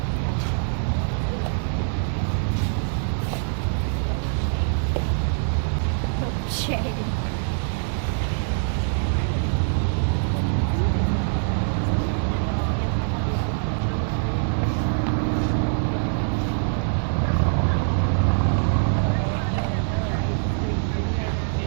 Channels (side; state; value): left; silent; digital silence